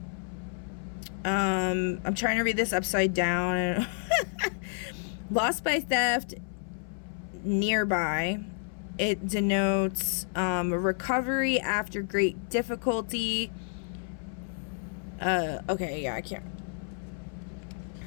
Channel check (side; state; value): right; silent; 58 dB below the other